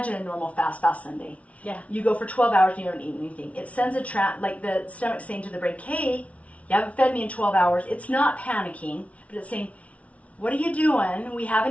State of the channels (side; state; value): right; late; 0.065 ms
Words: a normal fast Sunday. Yeah. You go for 12 hours and you don't eat anything. It sends like the stomach saying to the brain, hey, you haven't fed me in 12 hours. It's not panicking, but it's saying, what are you doing? We